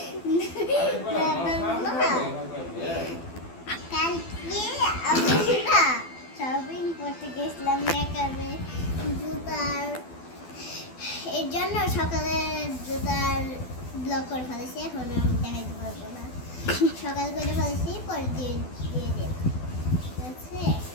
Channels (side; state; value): right; late; 12 ms